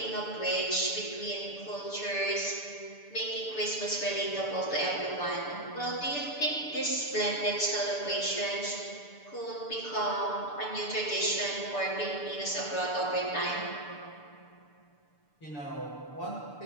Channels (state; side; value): late; right; 6.8 ms